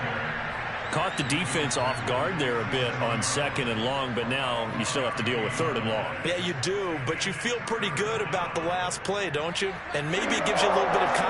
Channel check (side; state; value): both; identical; correlation 1.00